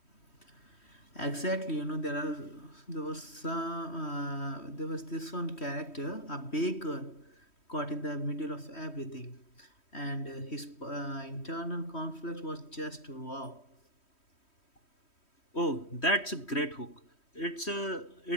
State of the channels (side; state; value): right; late; 3.1 ms